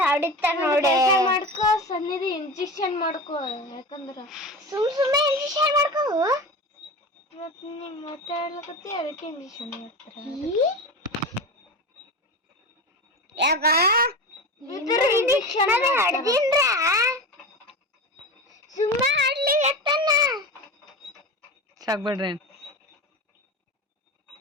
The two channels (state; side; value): normal; both; correlation 0.26